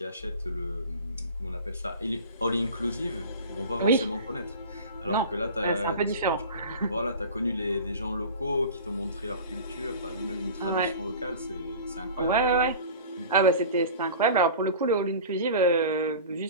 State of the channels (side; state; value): both; inverted; correlation -0.36